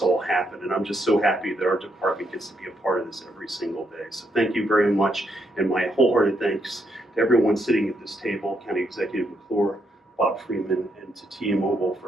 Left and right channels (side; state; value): both; normal; correlation 0.77